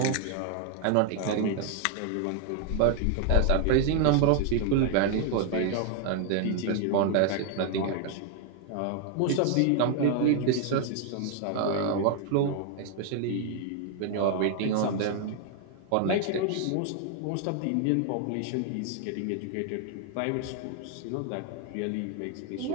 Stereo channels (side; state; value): both; different; correlation 0.00